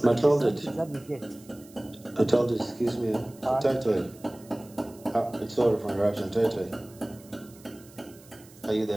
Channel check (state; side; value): noise; right; hiss, 24 dB below the sound